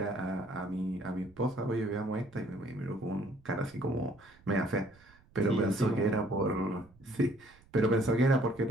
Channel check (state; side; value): noise; right; rumble, 28 dB below the sound